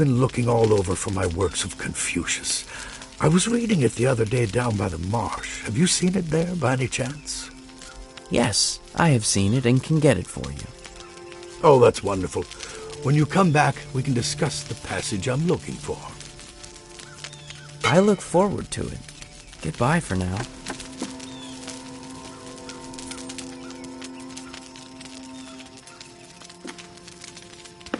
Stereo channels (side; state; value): both; identical; correlation 1.00